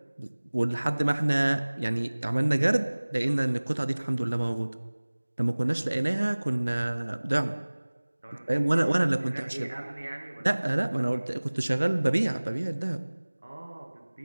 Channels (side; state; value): both; inverted; correlation -1.00